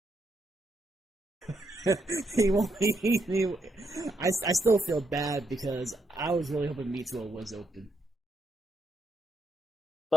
he won't. I still feel bad because I was really hoping Mitsuo was open.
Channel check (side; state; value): both; normal; correlation 0.79